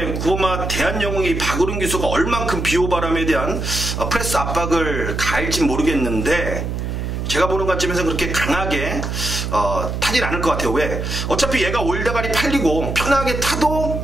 9번마 대한영웅이 박우른 기수가 얼만큼 비호바람에 대한 프레스 압박을 가할진 모르겠는데 제가 보는 관점에서 그렇게 강하게 타진 않을 것 같아요. 왜? 어차피 얘가 올다가리 팔리고 편하게 타도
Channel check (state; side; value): noise; right; hum, 3 dB below the sound